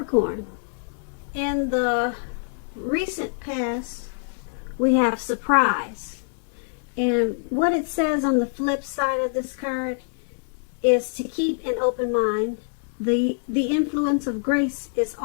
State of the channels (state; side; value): silent; right; digital silence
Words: in the recent past we have surprise, and what it says on the flip side of this card is to keep an open mind. The influence of grace is